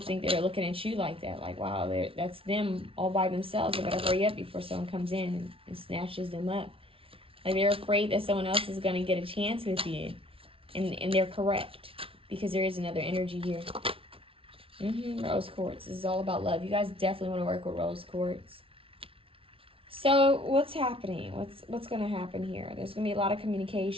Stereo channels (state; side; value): late; left; 0.26 ms